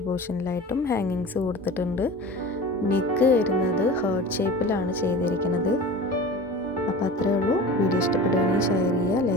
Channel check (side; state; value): both; normal; correlation 0.36